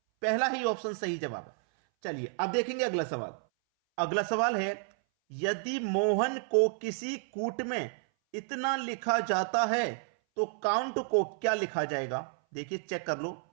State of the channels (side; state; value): left; silent; 57 dB below the other